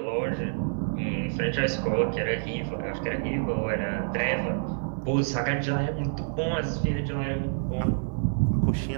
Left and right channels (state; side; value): silent; left; digital silence